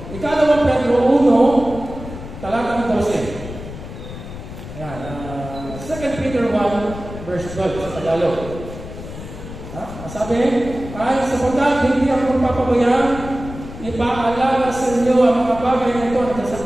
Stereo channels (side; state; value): left; noise; rumble, 12 dB below the sound